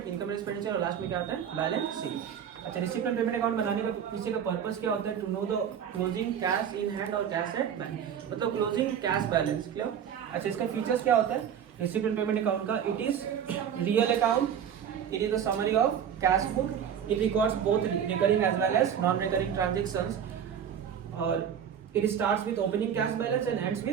इनकम एक्सपेंडिचर, और लास्ट में क्या आता है, बैलेंस शीट। अच्छा, रिसिप्ट एंड पेमेंट अकाउंट बनाने का पीछे का पर्पस क्या होता है, to know the closing cash in hand और कैश एट बैंक, मतलब क्लोजिंग कैश बैलेंस, क्लियर। अच्छा, इसका फीचर्स क्या होता है रिसिप्ट एंड पेमेंट अकाउंट का, it is real account, it is the summary of cash book, it records both recurring as well as non recurring transactions, और it starts with opening cash balance and ends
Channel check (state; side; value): quieter; left; 8.5 dB